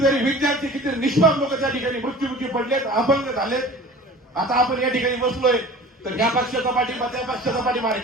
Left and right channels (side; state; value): both; normal; correlation 0.42